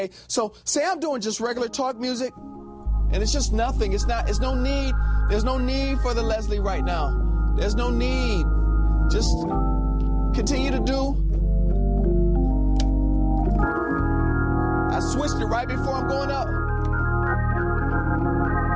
So say I'm doing just regular talk music and it's just nothing. There's no need for the Leslie right now. There's no need. Just continue to do. I switched it right before I'm going up.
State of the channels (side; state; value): both; identical; correlation 1.00